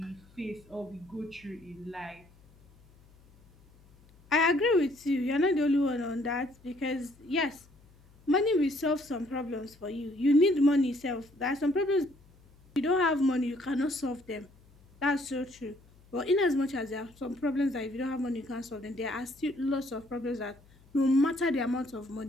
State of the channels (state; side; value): noise; left; hum, 27 dB below the sound